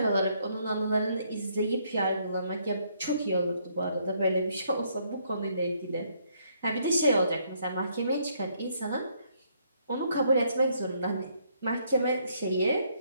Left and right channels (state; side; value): inverted; both; correlation -0.70